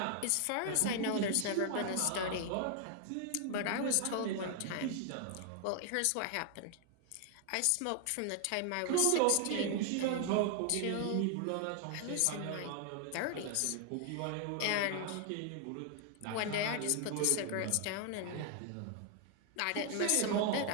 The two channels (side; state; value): both; different; correlation 0.00